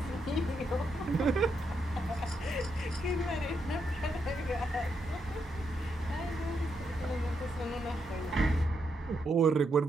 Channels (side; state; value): both; normal; correlation 0.80